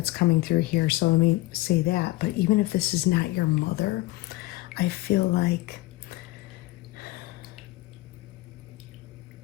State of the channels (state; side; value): quieter; right; 18.7 dB